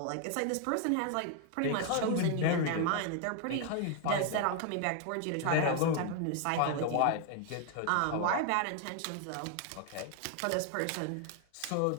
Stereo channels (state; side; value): different; both; correlation 0.01